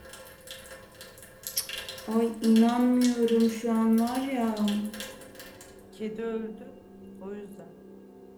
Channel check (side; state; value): both; identical; correlation 1.00